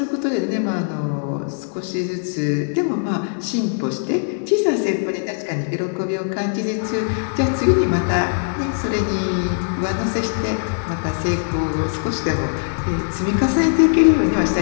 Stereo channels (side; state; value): right; silent; digital silence